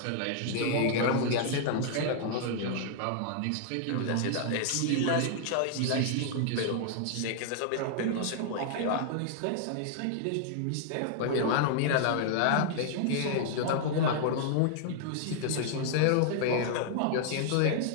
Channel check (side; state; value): both; different; correlation -0.01